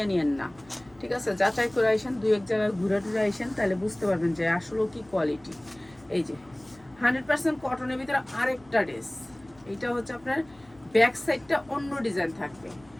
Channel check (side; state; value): left; noise; hum, 28 dB below the sound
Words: নিয়েন না, ঠিক আছে? যাচাই করে আইসেন, দুই এক জায়গায় ঘুরে টুরে আইসেন, তাহলে বুঝতে পারবেন যে আসলে কি কোয়ালিটি। এই যে 100% কটনের ভিতরে আরেকটা ড্রেস, এইটা হচ্ছে আপনার ব্যাক সাইডটা অন্য ডিজাইন থাকবে,